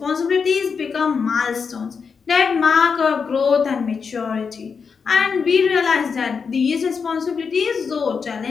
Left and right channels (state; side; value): quieter; right; 5.7 dB